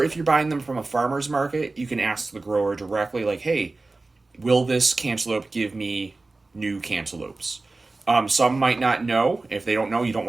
if you're buying them from a farmer's market, you can ask the grower directly, like, hey, will this cantaloupe give me new cantaloupes? Some might not know. If they don't know, you don't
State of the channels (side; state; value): left; quieter; 3.4 dB